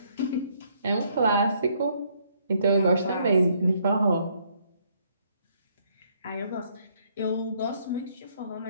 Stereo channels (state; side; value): inverted; both; correlation -0.69